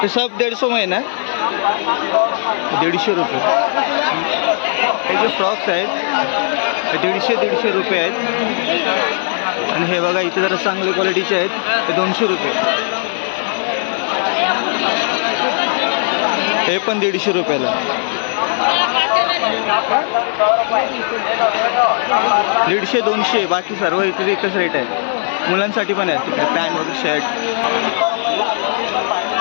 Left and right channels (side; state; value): right; silent; 55 dB below the other